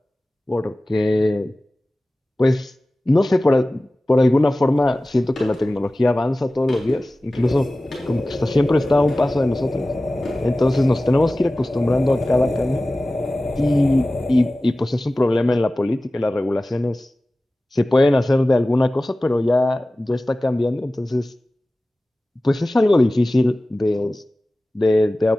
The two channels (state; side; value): normal; both; correlation 0.97